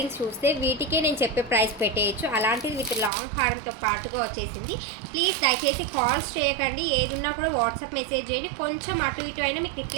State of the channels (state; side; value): drops out; left; at 3.1 s